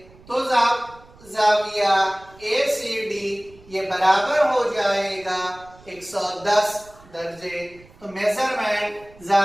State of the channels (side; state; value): right; noise; rumble, 25 dB below the sound